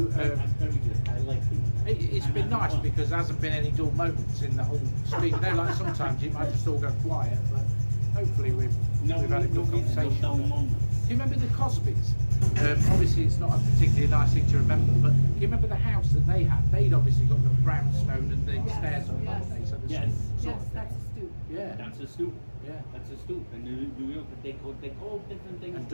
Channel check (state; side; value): inverted; both; correlation -1.00